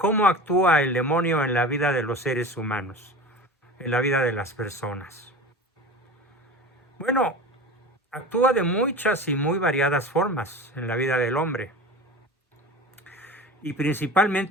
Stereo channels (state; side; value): normal; both; correlation 0.33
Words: actúa el demonio en la vida de los seres humanos, en la vida de las personas? Bueno, actúa de muchas y muy variadas formas en la vida del hombre. Y